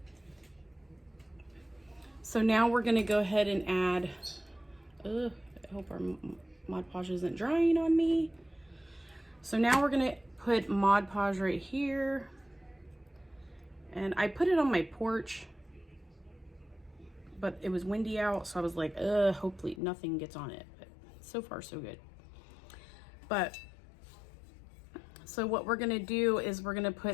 So now we're gonna go ahead and add, I hope our Mod-Podge isn't drying on me. So now we're gonna put Mod-Podge right here. And I put it on my porch, but it was windy out, so I was like, hopefully nothing gets on it. But so far, so good. But, so what we're gonna do is we're gonna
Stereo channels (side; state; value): right; drops out; at 19.8 s